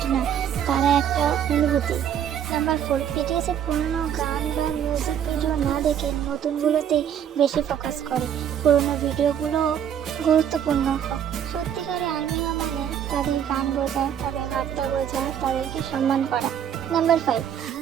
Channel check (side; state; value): left; quieter; 9.2 dB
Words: না, তারা একটা অনুভূতি। নাম্বার 4, বিটিএস এর পুরনো গান বা মিউজিক ভিডিও না দেখে নতুনগুলোতেই বেশি ফোকাস করে। পুরনো ভিডিওগুলো গুরুত্বপূর্ণ। সত্যিকারের আর্মি মানে তাদের গান বোঝা, তাদের বার্তা বোঝা, তাদেরকে সম্মান করা। নাম্বার 5,